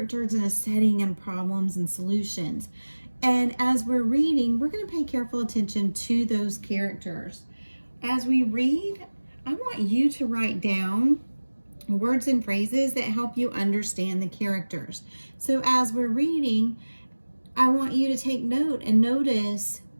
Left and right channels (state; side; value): inverted; both; correlation -1.00